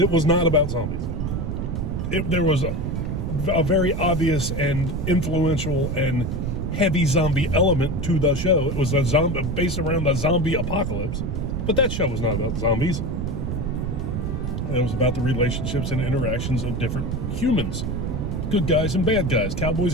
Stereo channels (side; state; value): right; noise; rumble, 2 dB below the sound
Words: was not about zombies. There was a very obvious and influential and heavy zombie element to the show. It was a zombie based around the zombie apocalypse, but that show was not about zombies. It was about the relationships and interactions of different humans. Good guys and bad guys, cowboys